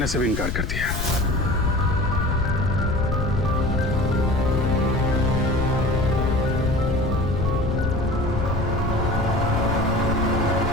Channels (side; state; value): left; noise; rumble, 3 dB below the sound